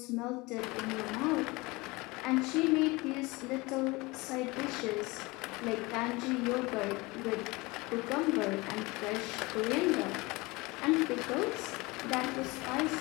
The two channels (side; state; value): right; quieter; 23.6 dB